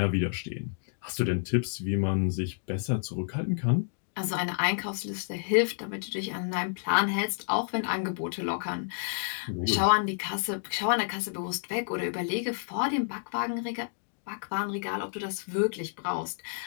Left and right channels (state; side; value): silent; right; digital silence